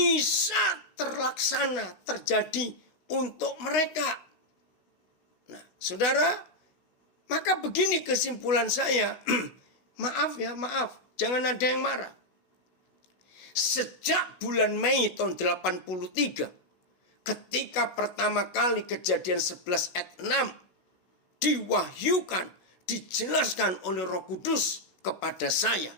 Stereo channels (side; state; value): right; late; 16 ms